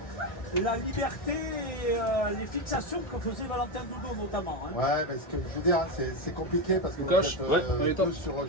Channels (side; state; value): right; late; 1.6 ms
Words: la liberté et les fixations que faisait Valentin Doudou notamment. Hein. Ouais, parce que je veux dire, c'est compliqué parce que vous êtes tous sur